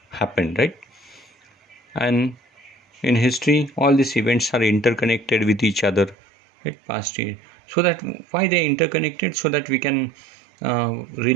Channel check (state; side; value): drops out; left; at 6.2 s